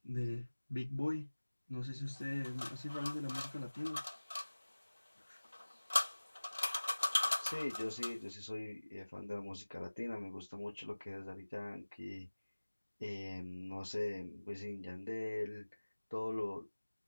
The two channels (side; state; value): both; inverted; correlation -1.00